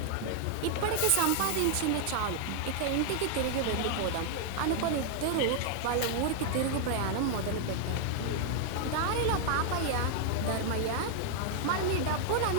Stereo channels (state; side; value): different; both; correlation 0.00